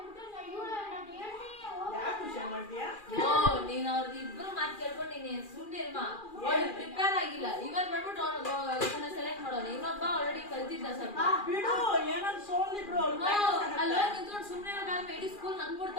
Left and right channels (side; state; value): right; late; 2.4 ms